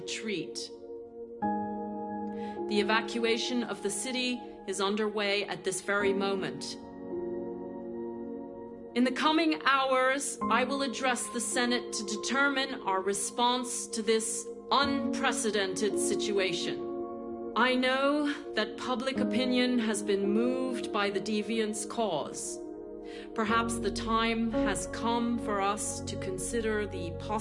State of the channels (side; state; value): both; identical; correlation 1.00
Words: The evacuation of the city is underway at this very moment. In the coming hours, I will address the Senate to determine our response to this unprecedented situation. I know that public opinion has been moved by the Deviants' cause. Perhaps the time has come for us to consider the